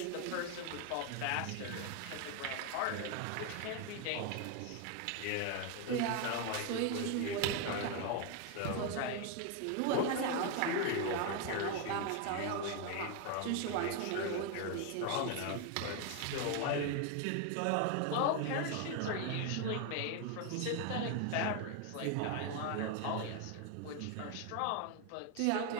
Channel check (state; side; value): different; both; correlation 0.01